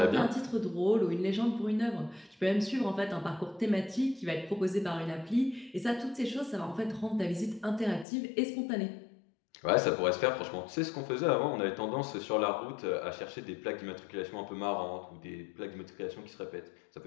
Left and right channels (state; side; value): drops out; right; at 8.1 s